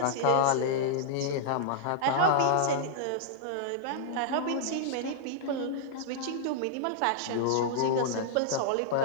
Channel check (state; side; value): different; both; correlation -0.01